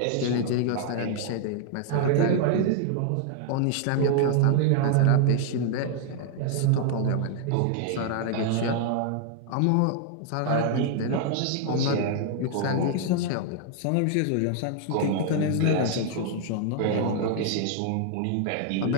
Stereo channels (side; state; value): both; different; correlation 0.00